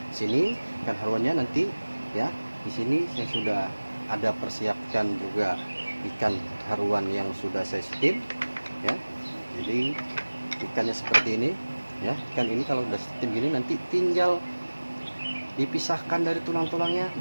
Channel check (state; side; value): inverted; both; correlation -1.00